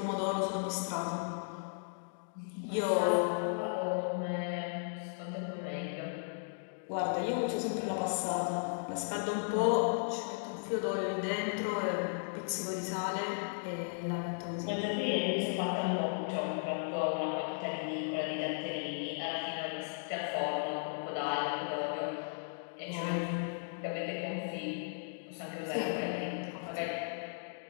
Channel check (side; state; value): right; silent; digital silence